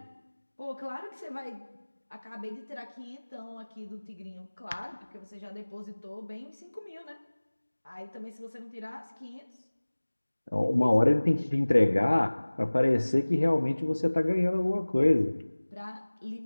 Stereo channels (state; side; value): inverted; both; correlation -1.00